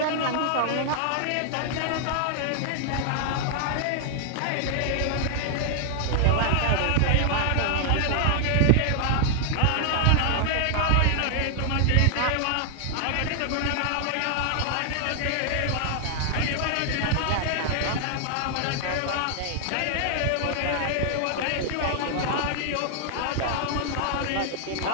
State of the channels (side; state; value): both; different; correlation 0.00